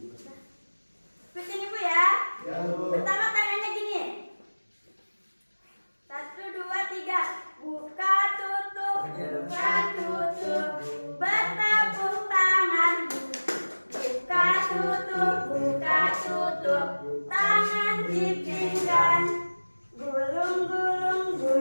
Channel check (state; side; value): inverted; both; correlation -1.00